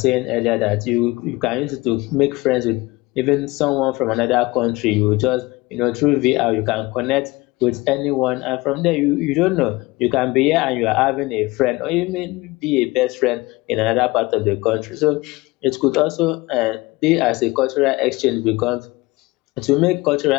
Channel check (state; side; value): quieter; right; 21.9 dB